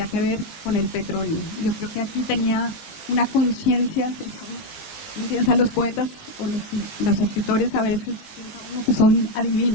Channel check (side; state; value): right; late; 19 ms